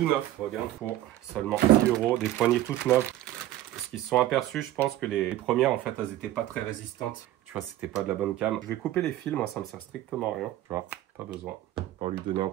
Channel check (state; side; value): quieter; left; 14.1 dB